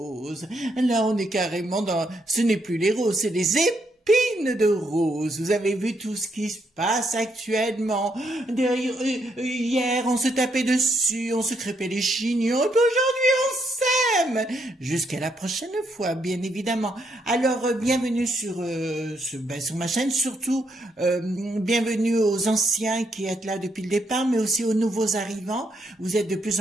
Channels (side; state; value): both; normal; correlation 0.76